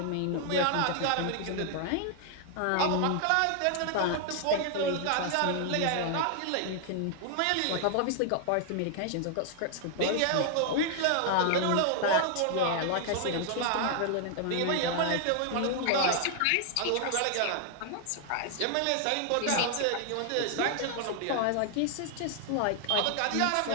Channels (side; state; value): both; different; correlation 0.00